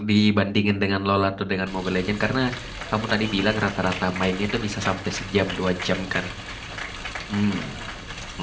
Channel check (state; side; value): identical; both; correlation 1.00